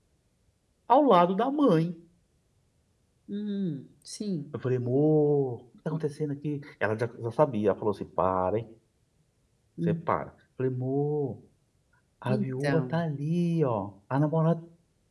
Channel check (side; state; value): both; identical; correlation 1.00